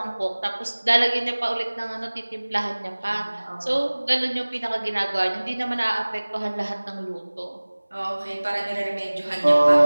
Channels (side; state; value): both; inverted; correlation -1.00